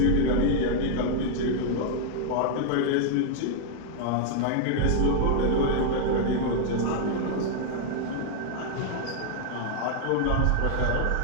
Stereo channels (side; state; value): both; different; correlation -0.01